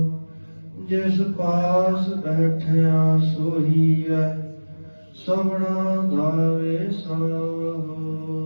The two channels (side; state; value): both; inverted; correlation -1.00